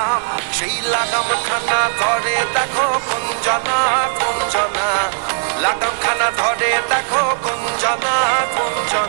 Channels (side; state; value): left; silent; digital silence